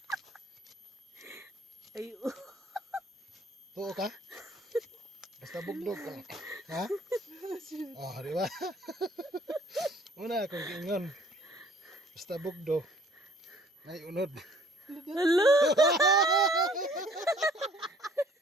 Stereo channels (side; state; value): both; normal; correlation 0.56